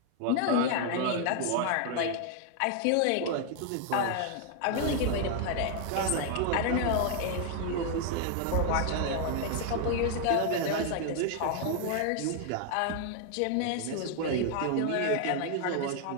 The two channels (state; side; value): different; both; correlation 0.00